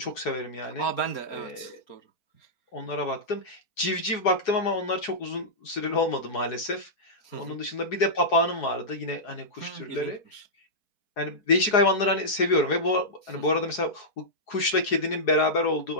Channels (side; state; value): right; late; 4.8 ms